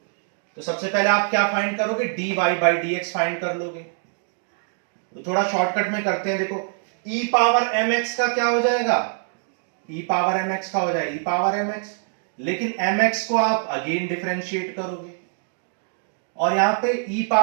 तो सबसे पहले आप क्या फाइंड करोगे, dy by dx फाइंड कर लोगे। तो थोड़ा शॉर्टकट में करते हैं, देखो e पावर mx का क्या हो जाएगा, e पावर mx का हो जाएगा e पावर mx, लेकिन mx को आप अगेन डिफरेंशिएट करोगे, और यहां पे e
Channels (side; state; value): left; silent; 56 dB below the other